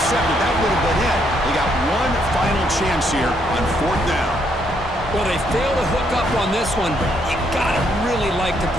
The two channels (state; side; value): normal; both; correlation 0.73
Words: That would have been it. They got one final chance here on 4th down. Well, they failed to hook up on this one, but you gotta really like the